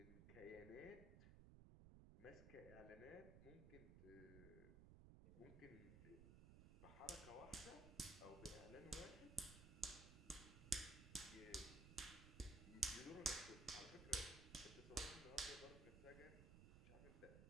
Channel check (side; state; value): right; noise; rumble, 12 dB below the sound